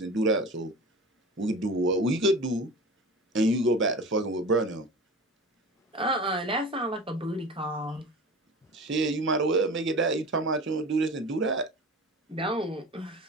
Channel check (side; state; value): both; normal; correlation 0.34